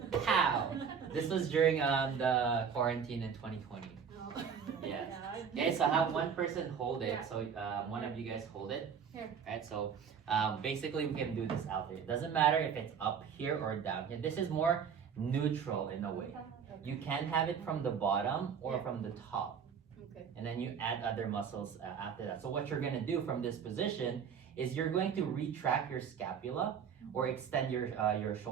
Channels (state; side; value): quieter; left; 7.0 dB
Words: how? This was during the quarantine in 2020. Oh. Yes. Yeah. Okay, so have one person hold it. Yeah. So one of you guys hold it. Here. Right, so basically we can do this out there. It doesn't matter if it's up here or down here. This is more neutral in a way. You can have it from the bottom or Yeah. from the top. Okay. And then you add other muscles after that. So what you're gonna do from this position is you're going to retract your scapula or extend your